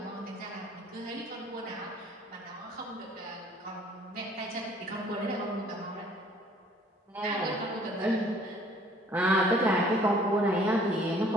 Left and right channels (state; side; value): normal; both; correlation 0.57